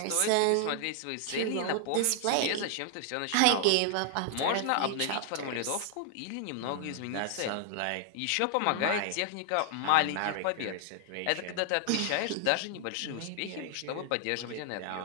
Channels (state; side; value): different; both; correlation 0.00